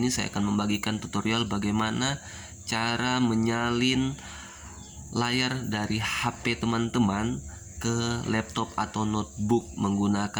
saya akan membagikan tutorial bagaimana cara menyalin layar dari HP teman-teman ke laptop atau notebook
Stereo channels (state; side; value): identical; both; correlation 1.00